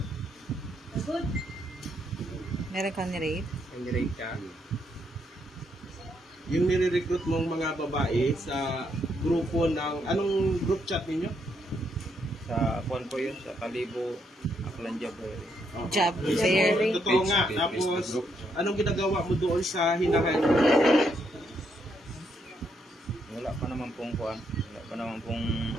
Good. Meron kang ni-rape? May nirape ka? Yung nire-recruit mong mga babae sa grupo ng anong group chat ninyo? Sa kuwan po yun, sa Kalibo, Aklan Jabber. Job fair. Totoo nga. Tapos, anong ginagawa mo doon sa hinahan? Wala pa naman pong kuwan. Wala pa naman pong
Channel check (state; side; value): normal; both; correlation 0.76